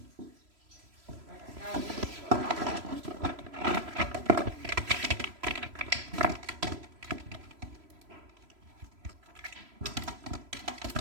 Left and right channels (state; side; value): late; left; 3.0 ms